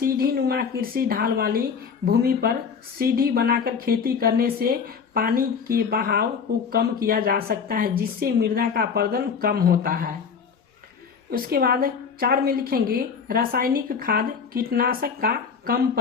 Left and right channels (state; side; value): quieter; right; 6.2 dB